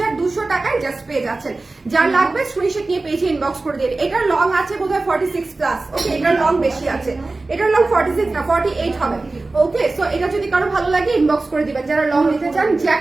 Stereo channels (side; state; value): left; quieter; 3.3 dB